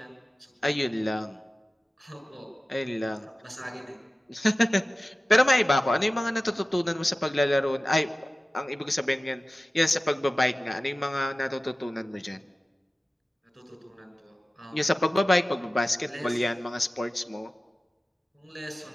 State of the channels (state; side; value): normal; both; correlation 0.96